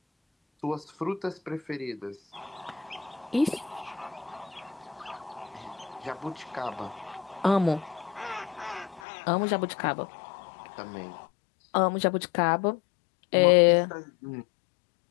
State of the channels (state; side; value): drops out; right; at 9.0 s